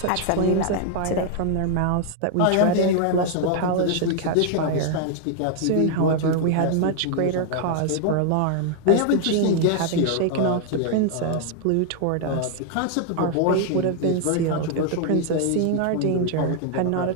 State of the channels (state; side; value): different; both; correlation 0.00